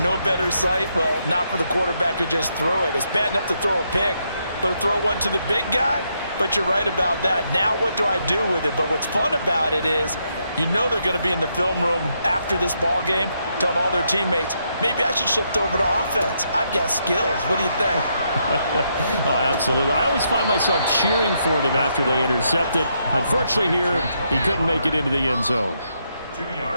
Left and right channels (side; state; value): both; inverted; correlation -0.78